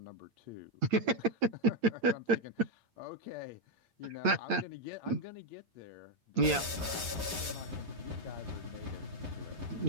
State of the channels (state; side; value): late; left; 8.7 ms